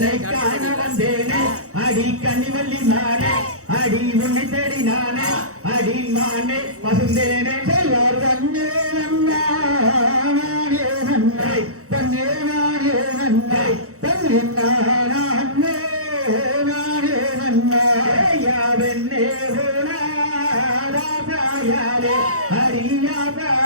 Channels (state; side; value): late; left; 0.65 ms